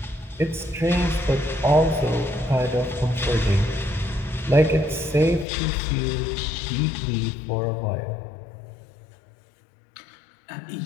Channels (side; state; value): right; drops out; at 5.5 s